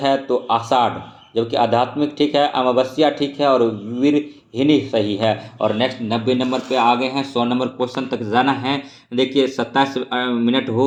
तो आषाढ़, जबकि आध्यात्मिक ठीक है, अमावस्या ठीक है और वीरहिनी सही है। और नेक्स्ट 90 नंबर पे आ गए हैं, 100 नंबर क्वेश्चन तक जाना है। देखिए 27 मिनट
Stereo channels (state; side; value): identical; both; correlation 1.00